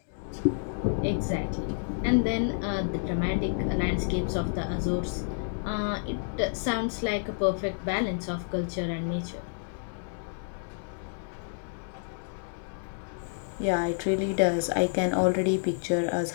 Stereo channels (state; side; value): silent; right; digital silence